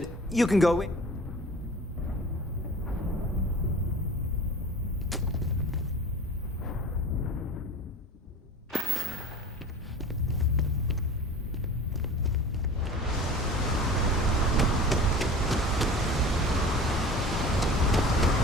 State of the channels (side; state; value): both; normal; correlation 0.39